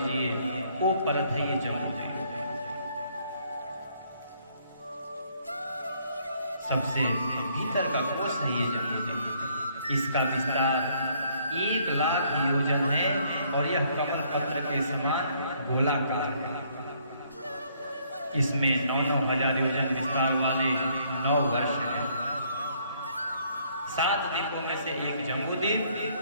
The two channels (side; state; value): both; inverted; correlation -0.66